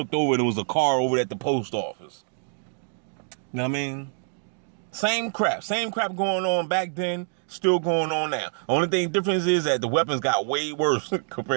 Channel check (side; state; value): left; silent; digital silence